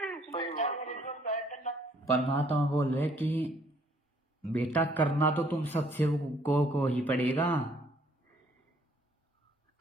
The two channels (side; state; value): both; normal; correlation 0.63